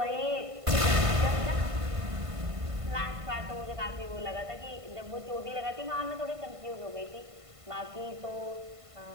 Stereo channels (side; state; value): left; late; 1.5 ms